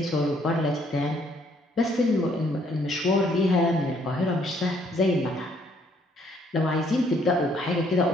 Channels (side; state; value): both; normal; correlation 0.66